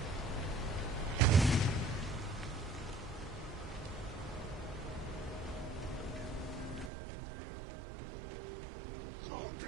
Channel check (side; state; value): left; drops out; at 6.9 s